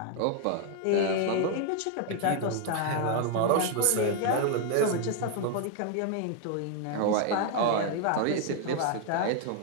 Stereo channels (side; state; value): both; different; correlation 0.00